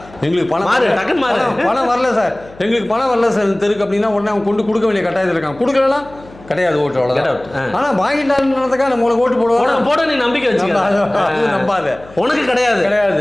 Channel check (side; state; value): left; noise; hum, 22 dB below the sound